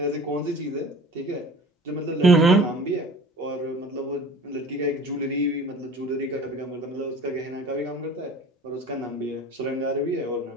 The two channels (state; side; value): normal; both; correlation 0.43